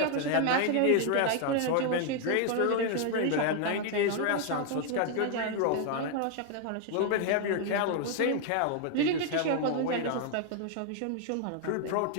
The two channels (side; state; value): both; different; correlation 0.00